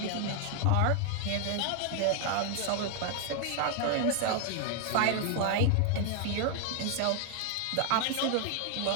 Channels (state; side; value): different; both; correlation 0.00